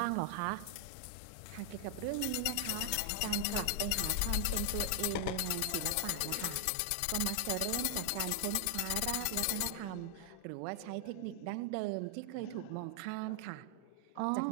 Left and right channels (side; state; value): both; different; correlation 0.00